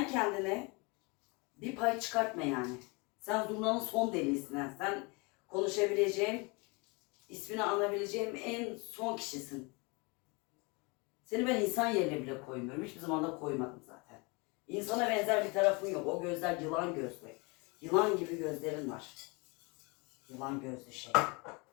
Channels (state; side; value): quieter; right; 28.8 dB